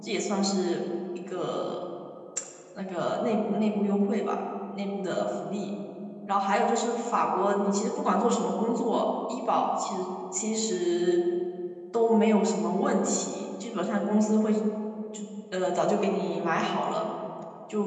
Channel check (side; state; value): both; identical; correlation 1.00